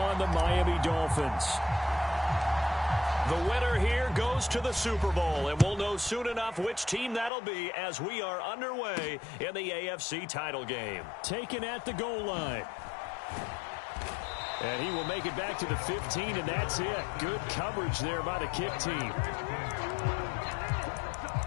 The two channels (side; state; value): right; drops out; at 7.3 s